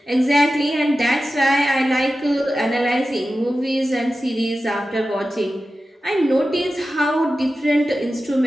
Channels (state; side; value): normal; both; correlation 0.94